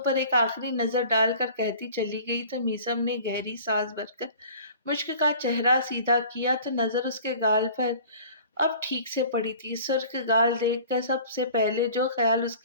पर एक आखिरी नजर डालकर कहती चली गई तो मीसम ने गहरी सांस भरकर मुश्क का चेहरा सीधा किया तो नजर उसके गाल पर अब ठीक से पड़ी थी। सुर्ख गाल देखकर सबसे पहले जो ख्याल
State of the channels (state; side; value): inverted; both; correlation -0.45